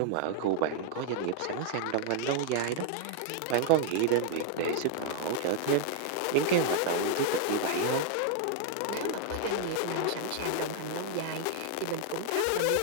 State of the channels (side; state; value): both; different; correlation 0.00